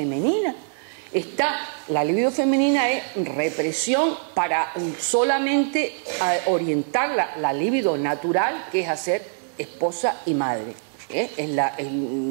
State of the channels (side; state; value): left; silent; 63 dB below the other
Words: La libido femenina es represión para solamente orientar la libido natural, que es hacer esposa y madre. Es